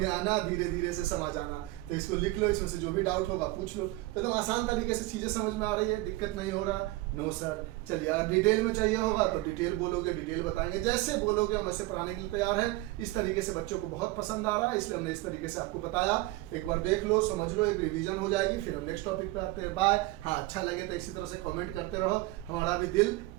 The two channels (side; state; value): left; quieter; 19.5 dB